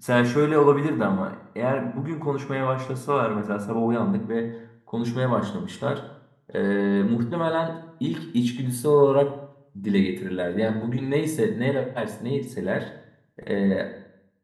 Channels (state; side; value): identical; both; correlation 1.00